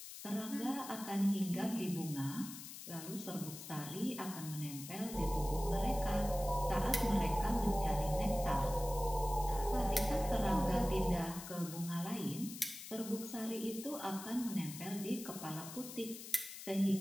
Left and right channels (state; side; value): noise; left; hiss, 11 dB below the sound